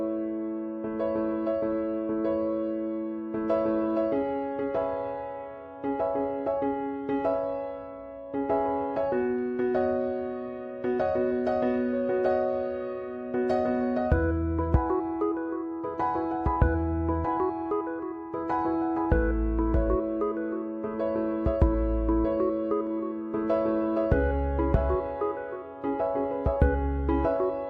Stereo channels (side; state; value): both; identical; correlation 1.00